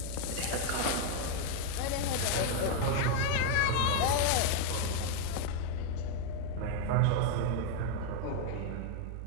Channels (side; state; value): both; different; correlation 0.01